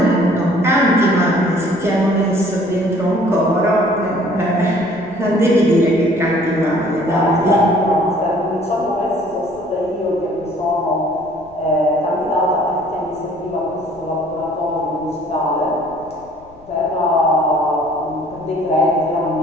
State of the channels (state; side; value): noise; left; rumble, 26 dB below the sound